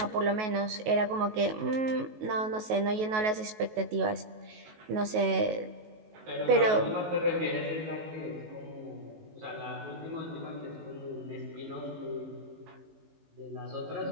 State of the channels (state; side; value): late; left; 19 ms